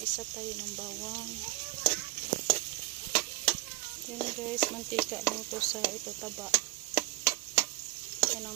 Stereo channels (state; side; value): quieter; left; 21.2 dB